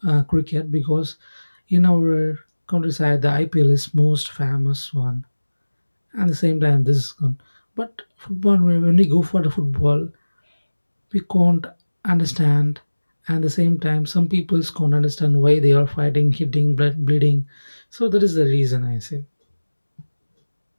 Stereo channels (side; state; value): both; inverted; correlation -1.00